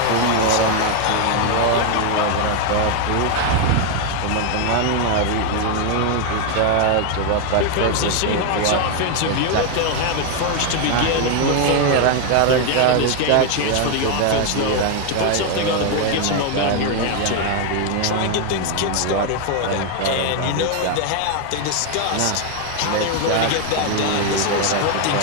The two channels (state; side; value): different; both; correlation 0.01